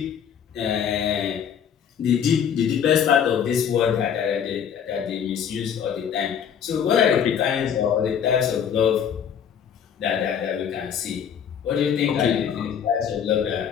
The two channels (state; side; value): quieter; right; 8.2 dB